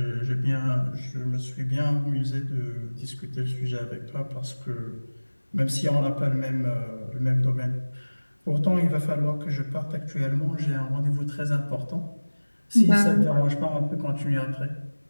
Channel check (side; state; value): both; inverted; correlation -1.00